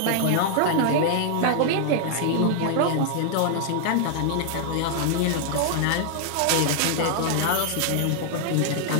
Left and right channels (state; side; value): different; both; correlation -0.01